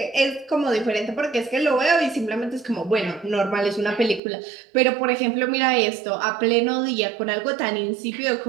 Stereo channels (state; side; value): drops out; left; at 4.2 s